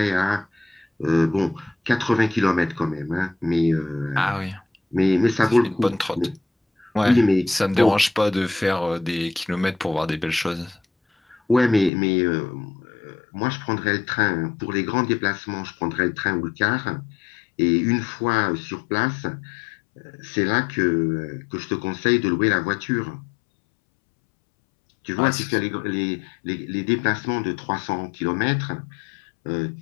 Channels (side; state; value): right; drops out; at 11.9 s